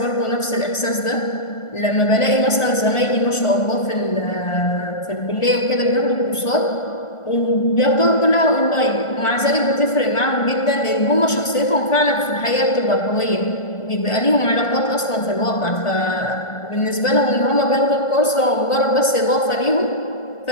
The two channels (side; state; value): right; late; 1.4 ms